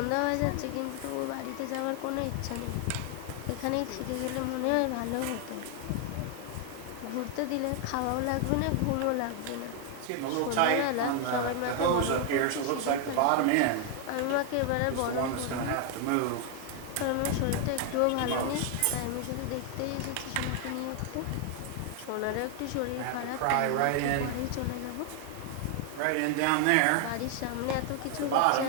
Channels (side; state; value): both; different; correlation 0.00